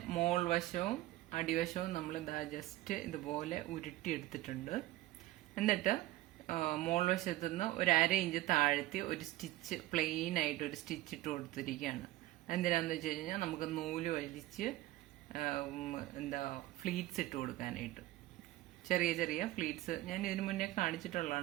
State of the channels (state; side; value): quieter; left; 16.7 dB